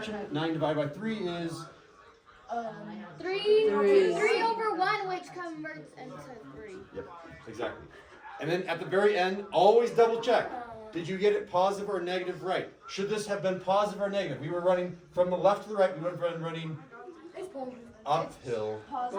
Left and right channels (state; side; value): identical; both; correlation 1.00